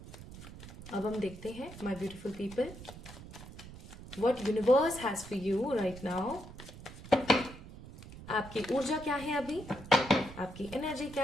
अब हम देखते हैं my beautiful people, what universe has for you right now. आपकी ऊर्जा क्या है अभी, आपकी एनर्जी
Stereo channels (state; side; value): noise; right; rumble, 15 dB below the sound